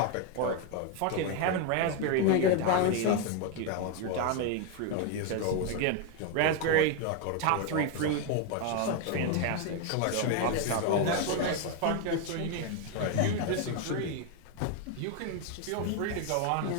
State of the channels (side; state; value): both; different; correlation 0.01